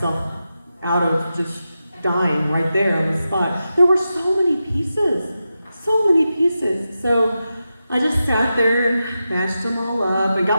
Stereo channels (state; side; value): inverted; both; correlation -0.90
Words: out of just dying right there on the spot. There were so many pieces. So I just sat there and mashed them all up and